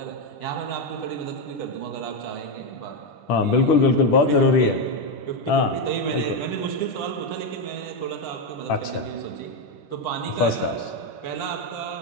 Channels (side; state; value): right; late; 10 ms